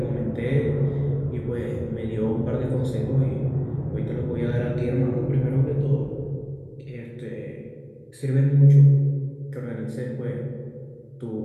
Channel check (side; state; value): both; identical; correlation 1.00